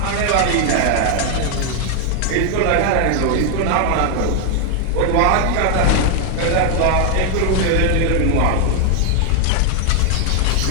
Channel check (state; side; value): different; both; correlation 0.00